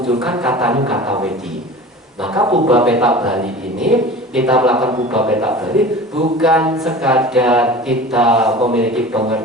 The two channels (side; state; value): both; normal; correlation 0.37